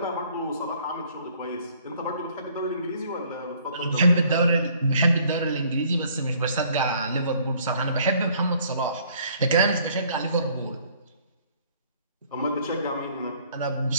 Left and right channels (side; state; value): both; inverted; correlation -0.60